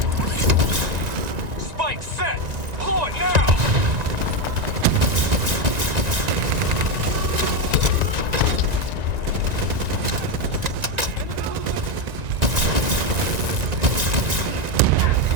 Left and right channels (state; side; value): late; left; 1.9 ms